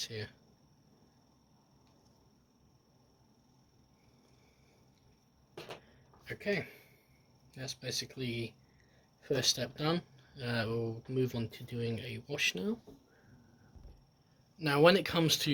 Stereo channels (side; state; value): both; identical; correlation 1.00